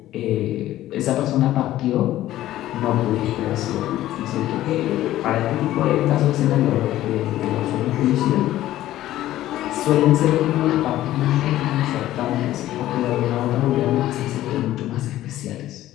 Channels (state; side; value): quieter; right; 14.2 dB